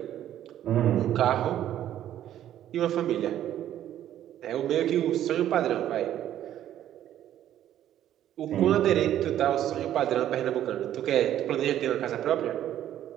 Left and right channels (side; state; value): left; quieter; 11.7 dB